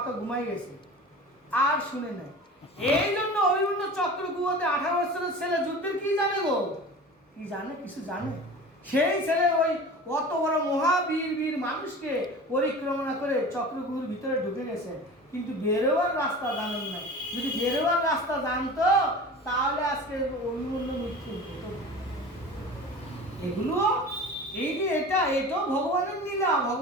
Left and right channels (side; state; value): both; normal; correlation 0.37